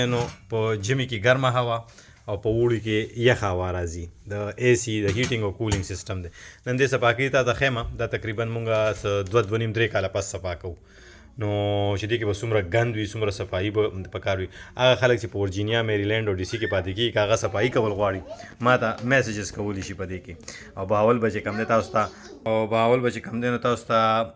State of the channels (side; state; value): both; identical; correlation 1.00